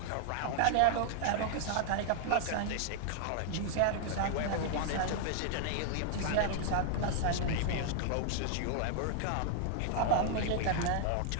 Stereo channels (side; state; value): both; different; correlation 0.00